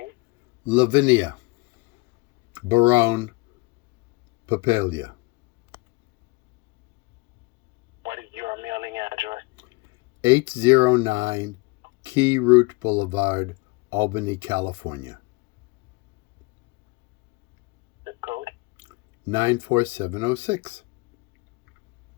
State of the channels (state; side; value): quieter; right; 25.7 dB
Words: Lavinia Barone Papalia. What is your mailing address? 809 Key Route Boulevard, Albany, California. Zip code? 94706.